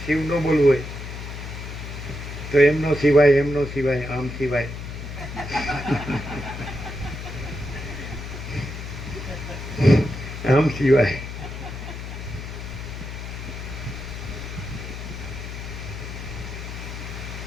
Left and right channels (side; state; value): left; noise; hum, 8 dB below the sound